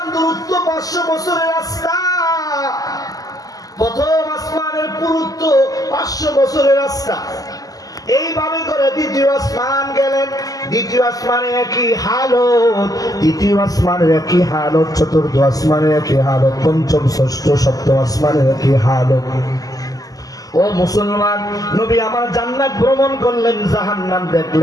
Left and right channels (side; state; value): right; late; 0.17 ms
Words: দূরত্ব 500 বছরের রাস্তা। প্রথম আসমানের পুরুত্ব 500 বছরের রাস্তা। এইভাবে করে দ্বিতীয় আসমান গেলেন। দ্বিতীয় আসমানে একই হালত, তৃতীয় আসমানের একই হালত, চতুর্থ আসমানের একই হালত, পঞ্চম ষষ্ঠ সপ্তম আসমানের একই হালত। ও মুসলমান, নবী আমার জান্নাত ভ্রমণ করলেন, জাহান্নাম